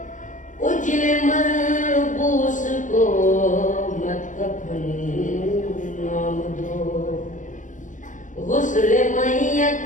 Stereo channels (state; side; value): late; right; 0.37 ms